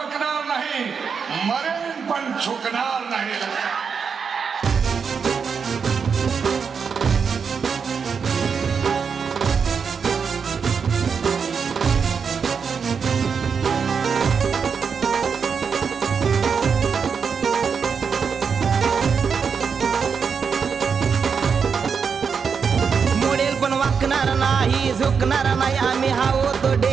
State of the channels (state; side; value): quieter; left; 6.1 dB